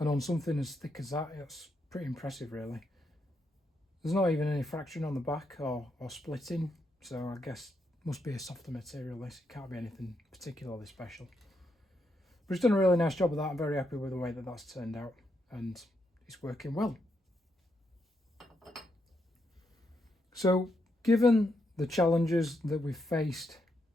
on something as thick as that, it's pretty impressive really. There's not even any fraction on the back or splitting. So I guess it must be a softer material this, it can't be anything particularly special. But it's done a really nice job of that. I'm very happy with the way that that's turned out and it's working well. So given the challenges that we've faced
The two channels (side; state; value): both; normal; correlation 0.80